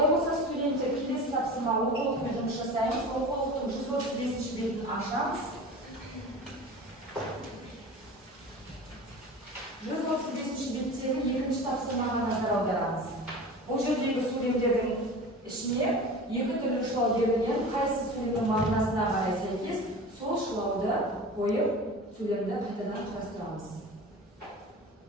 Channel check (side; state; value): both; normal; correlation 0.34